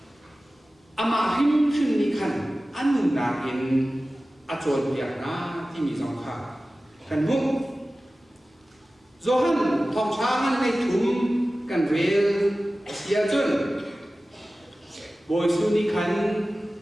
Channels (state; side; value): normal; both; correlation 0.96